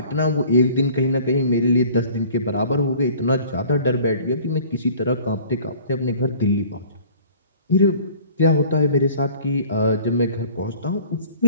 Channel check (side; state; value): both; inverted; correlation -0.49